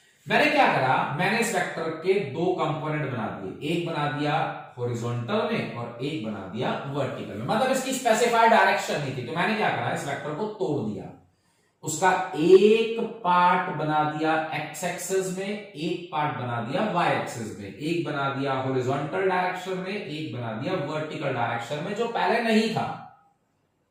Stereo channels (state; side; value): identical; both; correlation 1.00